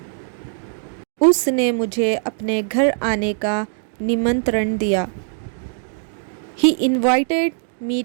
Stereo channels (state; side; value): silent; left; 65 dB below the other